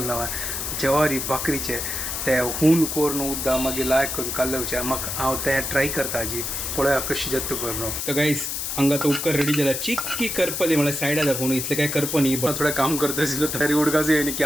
ना जवारी भाकरीचे ते हून करून उद्दा मागीर लायक करून कालवचे म्हाका हांव ते ट्राय करता हाजी पळया कशी जाता करून तर गायस हांगा तो उपकार रेडी जाला चिक्की करपली म्हळ्यार सायडा दाखोवन इतलें काय करप न्ही बट थोडें काम करता आशिल्लो तरी उडकाच येयनी की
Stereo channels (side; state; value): left; noise; hiss, 3 dB below the sound